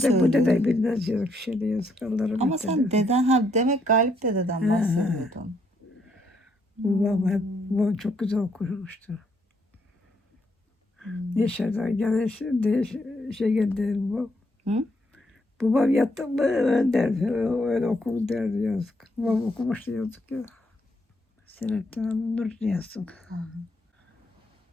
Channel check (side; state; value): both; normal; correlation 0.74